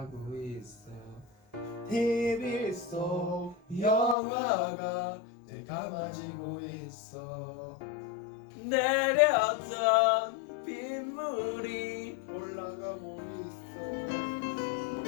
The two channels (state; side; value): drops out; right; at 4.2 s